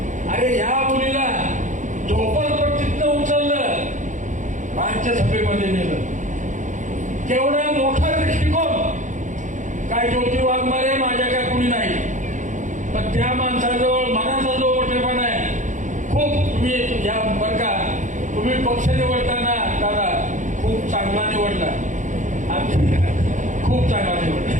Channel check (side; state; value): left; late; 0.36 ms